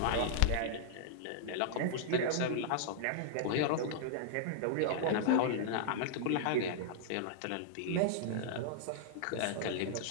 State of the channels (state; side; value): different; both; correlation -0.02